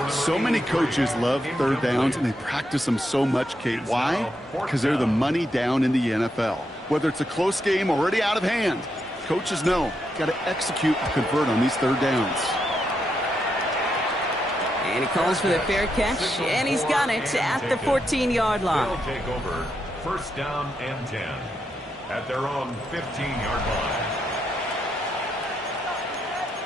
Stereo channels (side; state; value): both; normal; correlation 0.82